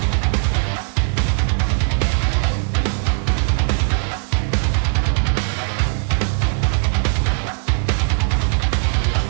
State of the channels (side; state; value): left; silent; 58 dB below the other